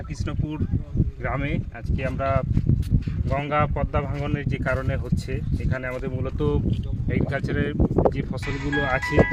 গ্রামে আজকে আমরা গঙ্গা পদ্মা ভাঙনের যে কারণে হচ্ছে, এখানে আমাদের মূলত এগ্রিকালচারের যে ফসলগুলো আছে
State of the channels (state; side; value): identical; both; correlation 1.00